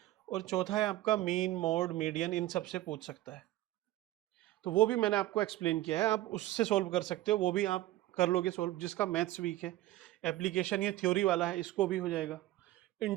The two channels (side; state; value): left; quieter; 15.9 dB